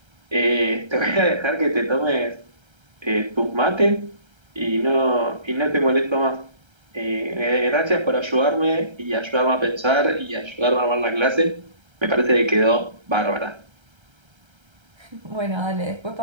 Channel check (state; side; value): late; left; 1.3 ms